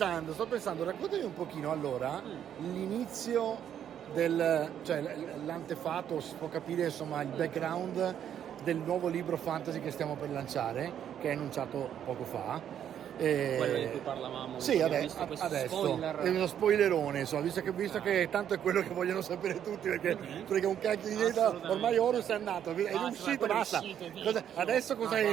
raccontami un pochino allora l'inizio cioè l'antefatto, si può capire insomma il background del nuovo libro fantasy che stiamo per lanciare, che è annunciato poco fa. Quello di cui parlavamo. Sì, adesso spoiler. È uno spoilerone, insomma, visto che tanto è quello che vogliono sapere tutti, perché un cacchio di idea, ormai Horus è andato, è uscito, basta. Adesso cosa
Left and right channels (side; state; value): left; quieter; 9.6 dB